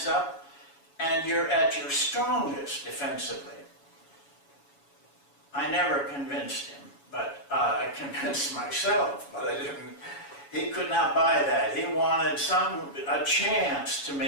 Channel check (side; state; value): right; late; 7.1 ms